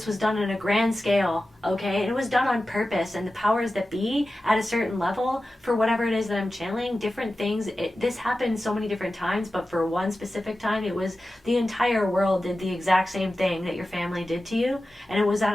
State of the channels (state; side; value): normal; both; correlation 0.94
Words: was done on a grand scale, okay? And it was done on purpose. And the powers that be at a certain level, for whatever it is that I'm channeling, different things, this happened so many different times, but for one specific time, it was the entire world did the exact same thing that your family did to you. And it was at